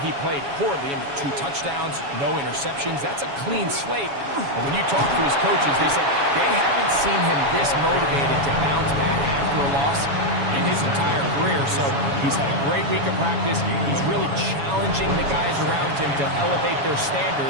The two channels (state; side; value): late; left; 7.2 ms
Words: he played poorly. I mean, 2 touchdowns, no interceptions. That's a clean slate. And when you talk to his coaches, they said they haven't seen him this motivated to bounce back after a loss in his entire career. So he's had a great week of practice. He's really challenging the guys around him to elevate their